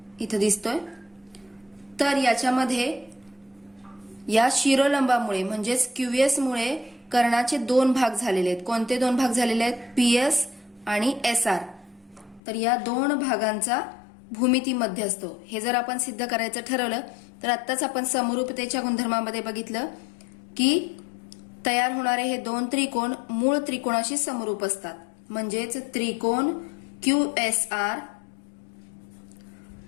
इथं दिसतोय. तर याच्यामध्ये या शिरोलंबामुळे म्हणजेच QS मुळे कर्णाचे दोन भाग झालेले आहेत. कोणते दोन भाग झालेले आहेत? PS आणि SR. तर या दोन भागांचा भूमितीमध्ये असतो. हे जर आपण सिद्ध करायचं ठरवलं तर आत्ताच आपण समरूपतेच्या गुणधर्मामध्ये बघितलं की तयार होणारे हे दोन त्रिकोण मूळ त्रिकोणाशी समरूप असतात. म्हणजेच त्रिकोण QSR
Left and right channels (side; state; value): right; drops out; at 12.4 s